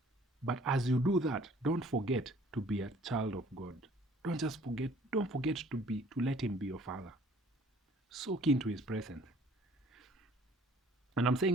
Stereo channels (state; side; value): normal; both; correlation 0.55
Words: But as you do that, don't forget to be a child of God. Don't forget to let him be your father. Soak into his presence. And I'm